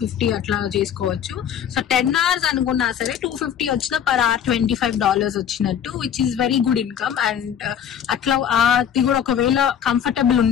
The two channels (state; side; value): quieter; right; 8.9 dB